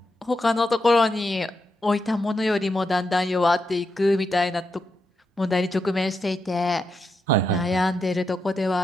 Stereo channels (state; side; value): normal; both; correlation 0.84